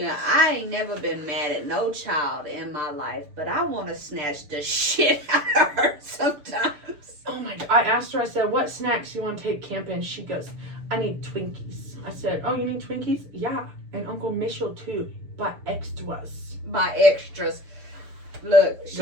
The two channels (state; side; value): late; left; 6.8 ms